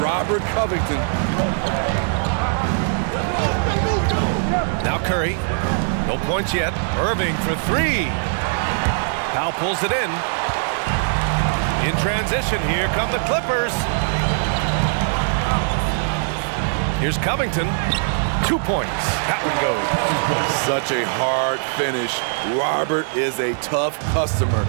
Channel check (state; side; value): silent; left; digital silence